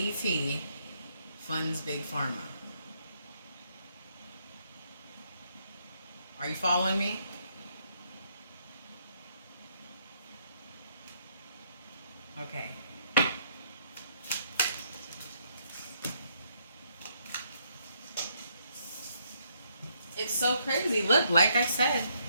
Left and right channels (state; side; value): inverted; both; correlation -0.73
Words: funds Big Pharma. Are you following me? Okay. It's so crazy. Look, like I said,